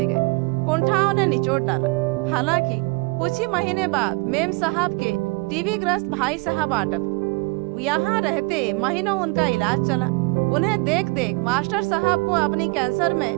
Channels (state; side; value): quieter; left; 28.7 dB